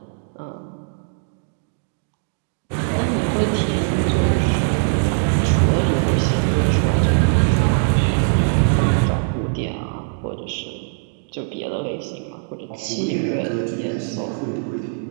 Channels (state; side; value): silent; left; digital silence